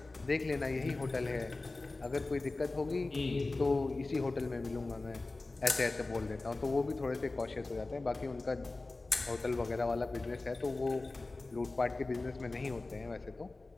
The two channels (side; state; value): right; quieter; 3.3 dB